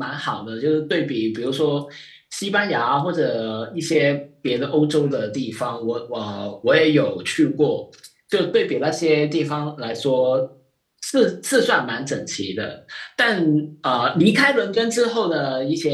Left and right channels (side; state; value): both; identical; correlation 1.00